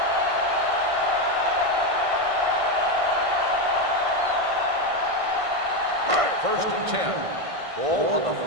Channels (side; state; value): left; late; 1.5 ms